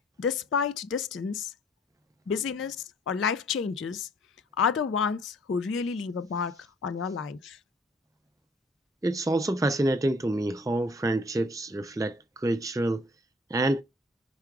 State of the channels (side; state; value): both; normal; correlation 0.56